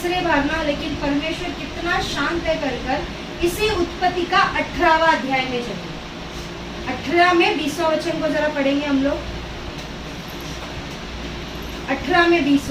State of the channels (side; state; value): both; identical; correlation 1.00